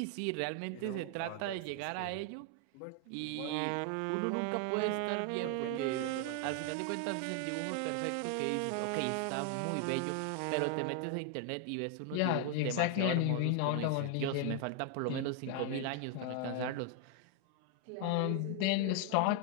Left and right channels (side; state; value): both; different; correlation 0.00